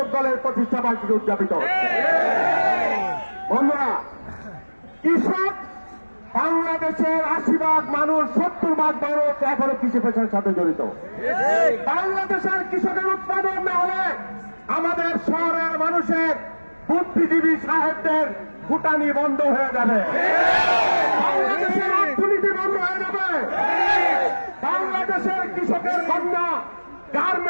দলের প্রতিষ্ঠা বার্ষিকী উদযাপিত। বন্ধুরা, কৃষক বাংলাদেশের 80% মানুষ, 70% মানুষ এখনো কৃষি পেশার সাথে জড়িত। বাংলাদেশের কৃষকের উৎপাদন না হলে আমাদের শহরের মানুষের বুদ্ধিজীবী সাহেবদের ফুটানি বন্ধ হয়ে যাবে, বাংলাদেশের অর্থনীতি বন্ধ হয়ে যাবে, বাংলাদেশের কৃষকের কন্যা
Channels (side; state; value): both; inverted; correlation -1.00